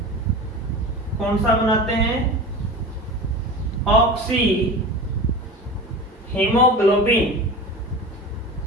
कौन सा बनाते हैं? Oxy haemoglobin.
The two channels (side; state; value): both; normal; correlation 0.32